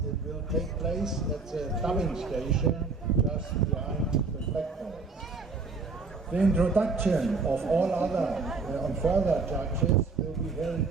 it will take place at the dubbing station just behind the spectators. The introduction of all other and further judges will be held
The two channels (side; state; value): left; quieter; 4.2 dB